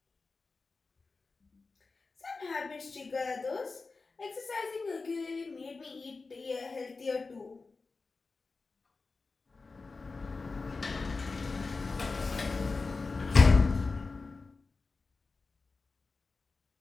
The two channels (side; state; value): right; quieter; 4.0 dB